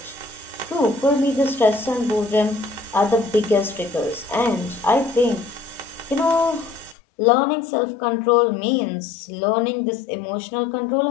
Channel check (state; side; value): drops out; right; at 7.0 s